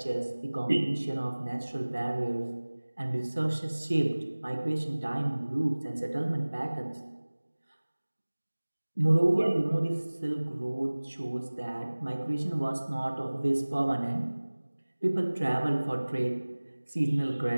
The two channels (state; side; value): inverted; both; correlation -1.00